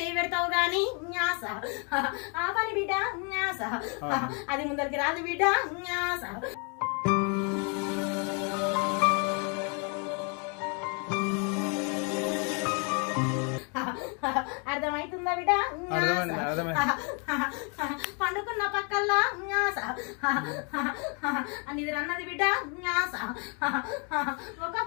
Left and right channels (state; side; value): quieter; right; 36.4 dB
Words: పెడతావు గాని న్యాస, ఆ పని బిడ్డ న్యాస, అది ముందరికి రాదు బిడ్డ న్యాస. అర్థమవుతుందా బిడ్డ? పండుకున్న పక్కల్లా న్యాస, నిద్ర అన్నది బిడ్డ న్యాస,